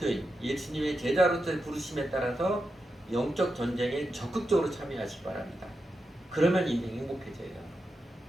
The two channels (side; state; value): both; normal; correlation 0.88